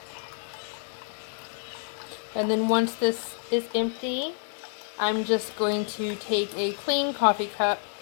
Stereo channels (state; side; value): silent; right; 59 dB below the other